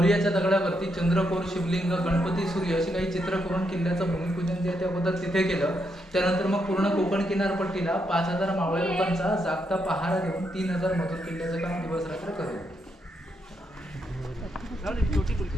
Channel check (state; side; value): normal; both; correlation 0.80